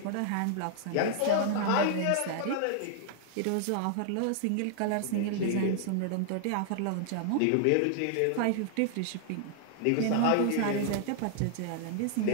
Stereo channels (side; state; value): both; different; correlation 0.00